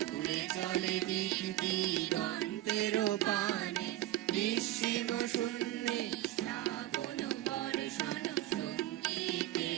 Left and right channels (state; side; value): quieter; left; 15.2 dB